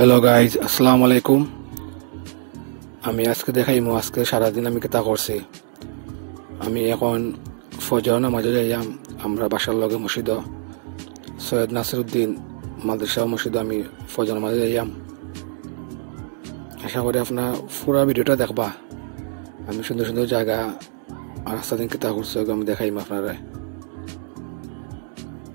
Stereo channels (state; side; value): silent; left; digital silence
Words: Hello guys, আসসালামু আলাইকুম। আমি আজকে দেখাইমু আজকে সারাদিন আমি কেতা করছি। আমি এখন ফজর নামাজে যাইয়াম আমরা বাসার লগে মসজিদ সৈয়দ নাসিরউদ্দিন মাদ্রাসা মসজিদ আমি ফজর নামাজে যাইয়াম। আশা করি আপনার পুরা ভিডিওটা দেখবা। আমি সুন্দর সুন্দর জায়গা আর রাস্তা দিন কেতা করছি আমি দেখাইম আপনারা।